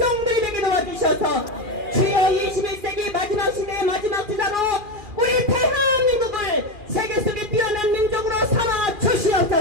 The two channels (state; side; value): late; left; 2.4 ms